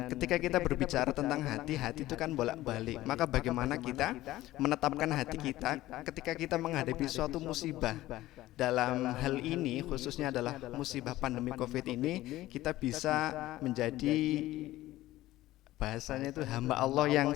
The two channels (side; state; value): right; quieter; 16.1 dB